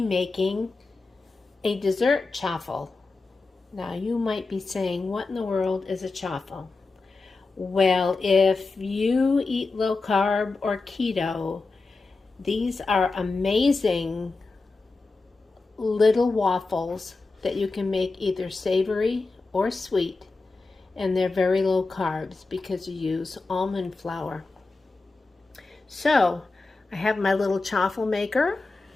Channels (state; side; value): quieter; right; 3.7 dB